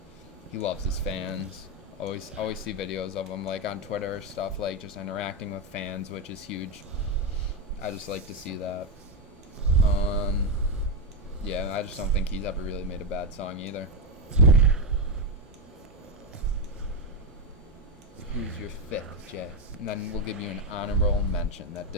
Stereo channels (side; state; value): both; normal; correlation 0.09